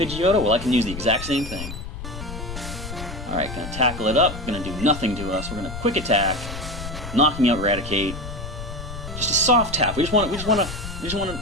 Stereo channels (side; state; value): left; noise; rumble, 9 dB below the sound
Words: Well, I can use the exact same thing. Alright, going to tackle it up. Going to do nothing to us. We're going to Quick Attack, knocking out Eradicate. Just a soft tap. We just want